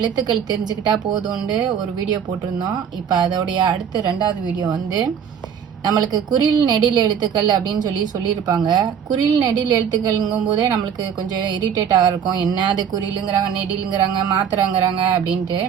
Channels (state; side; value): quieter; left; 8.0 dB